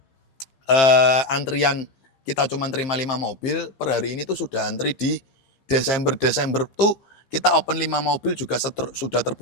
antrian kita cuman terima 5 mobil, per hari ini tuh sudah antri di Desember tuh kita open 5 mobil juga sudah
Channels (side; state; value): right; late; 15 ms